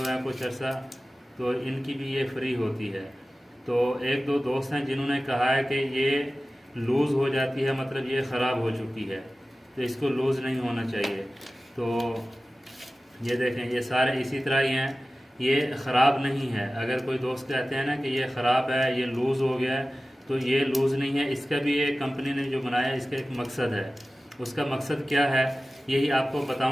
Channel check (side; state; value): both; normal; correlation 0.96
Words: हैं कुछ अर्सा, तो इनकी भी ये फ्री होती है। तो एक दो दोस्त हैं जिन्होंने कहा है कि ये लूज़ हो जाती है, मतलब ये ख़राब हो चुकी है, तो इसको लूज़ नहीं होना चाहिए। तो ये देखें, ये सारे इसी तरह ही हैं, ये ख़राब नहीं है। अगर कोई दोस्त कहते हैं ना कि ये ख़राब है, ये लूज़ हो गया है, तो ये लूज़ नहीं है। इसका भी ये कंपनी ने जो बनाया इसका एक मकसद है। उसका मकसद क्या है यही आपको